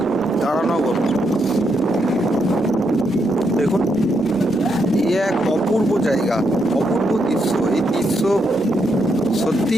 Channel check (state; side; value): normal; both; correlation 0.79